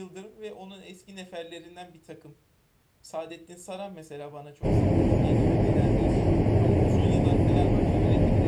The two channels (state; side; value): identical; both; correlation 1.00